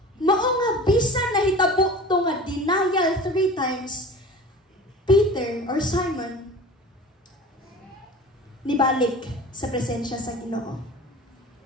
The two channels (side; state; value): both; normal; correlation 0.38